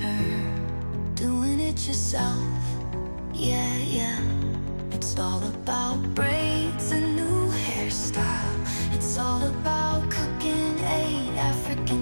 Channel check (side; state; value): both; inverted; correlation -1.00